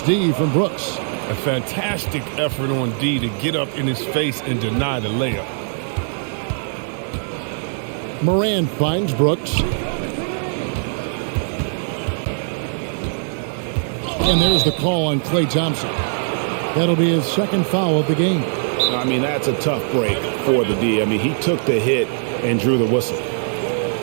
D from Brooks. A fantastic effort on D to get up in his face and deny the layup. Morant finds Brooks. And there's the call on Klay Thompson. That'll be his second foul of the game. I mean, that's a tough break for the D. I mean, he took the hit and drew the whistle.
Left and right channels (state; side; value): silent; left; 65 dB below the other